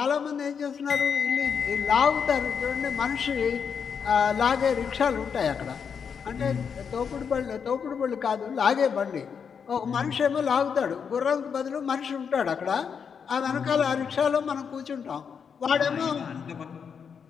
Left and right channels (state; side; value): quieter; right; 6.7 dB